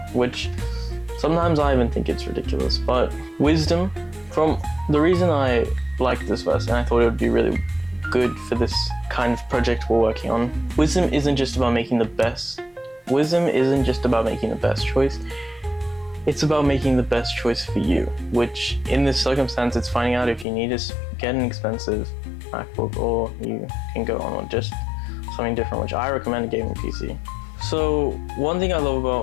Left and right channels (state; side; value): drops out; right; at 20.5 s